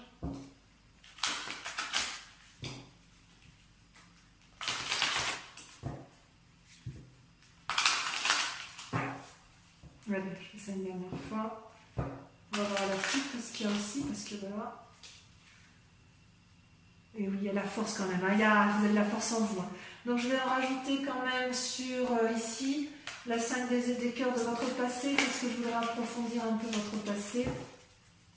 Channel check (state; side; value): identical; both; correlation 1.00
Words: allez, je fais ça une dernière fois. On va voir la suite, parce qu'il y a aussi, parce que voilà. Et oui, il y a la force quand même, hein. Vous avez de la force en vous. Hein. Donc je vais en rajouter quand même sur ici, la 5 des cœurs de votre passé, parce que je voudrais approfondir un peu votre passé.